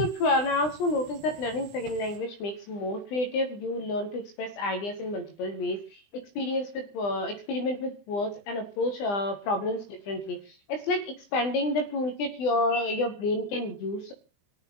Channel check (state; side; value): late; right; 20 ms